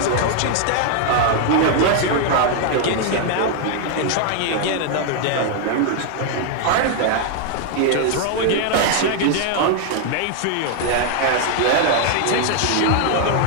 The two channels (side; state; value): both; different; correlation 0.00